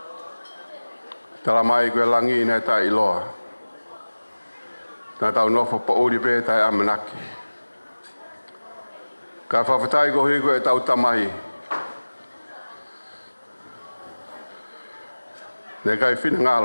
Tala mai koe langi nei tā iloa. Nā tau nofo pa uri pē tai amanaki. Ka whawhatai ko hui koe tau tamahi. Nei kai whina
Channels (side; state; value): both; inverted; correlation -1.00